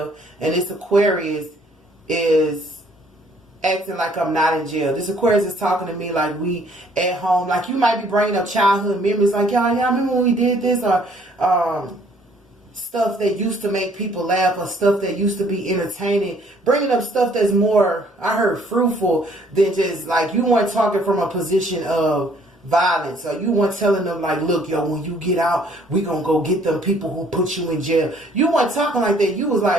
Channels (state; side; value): normal; both; correlation 0.61